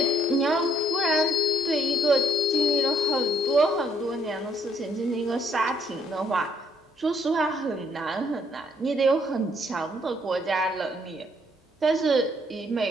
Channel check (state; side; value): normal; both; correlation 0.67